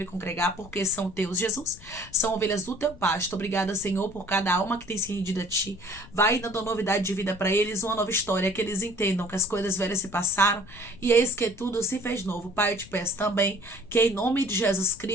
congregar, porque são teus, Jesus. São ovelhas do teu pasto. Obrigada, Senhor, por cada alma que tem se rendido a ti. Vai dando novidade de vida para eles, uma nova história, que eles entendam que as coisas velhas se passaram e eis que tudo se fez novo. Pai, eu te peço também que em nome de Jesus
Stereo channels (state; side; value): noise; left; rumble, 20 dB below the sound